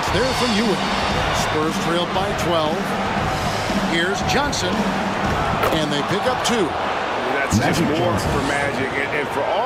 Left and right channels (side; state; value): both; identical; correlation 1.00